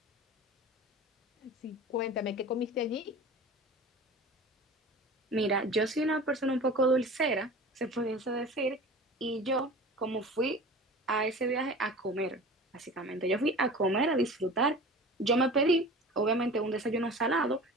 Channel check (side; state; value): both; normal; correlation 0.38